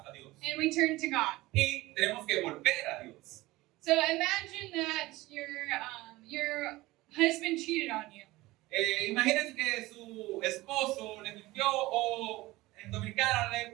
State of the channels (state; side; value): quieter; left; 19.3 dB